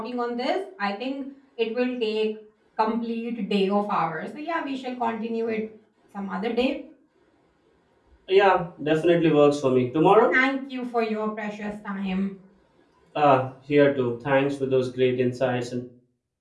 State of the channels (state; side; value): identical; both; correlation 1.00